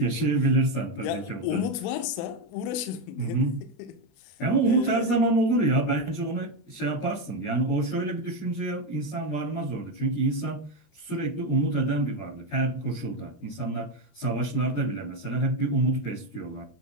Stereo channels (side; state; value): right; late; 20 ms